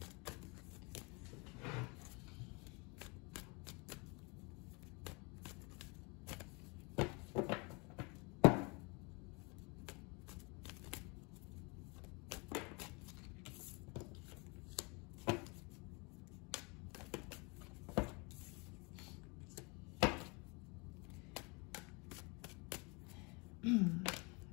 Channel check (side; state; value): right; quieter; 30.0 dB